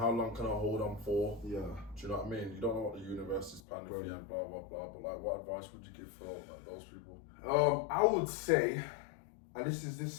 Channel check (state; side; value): drops out; right; at 3.6 s